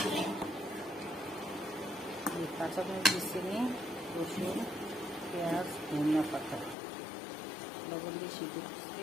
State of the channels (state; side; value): drops out; right; at 6.8 s